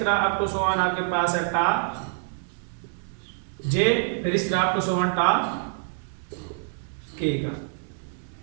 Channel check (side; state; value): left; silent; 61 dB below the other